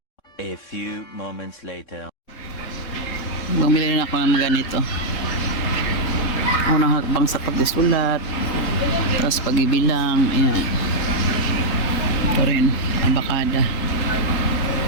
moments later. Bumili rin ako ng mga ganito. Unang hakbang sa pagsusulat. Tapos pag-ibilang. Ayan. Ito rin. Abakada.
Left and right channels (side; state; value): right; late; 3.7 ms